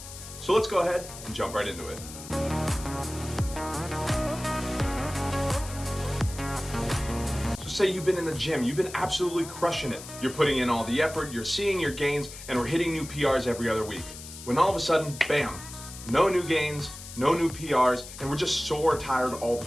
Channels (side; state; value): left; noise; hiss, 13 dB below the sound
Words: So let's go ahead and jump right into it. So say you've been in the gym, you've been absolutely crushing it. You're putting in all the effort, you're seeing your gains, and we're hitting new PRs every other week. When all of a sudden, bam, no new gains, no new PRs, and we're just sore tired all the